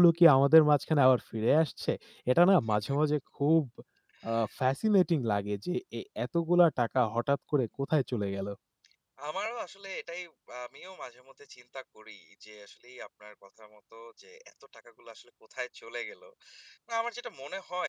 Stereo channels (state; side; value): identical; both; correlation 1.00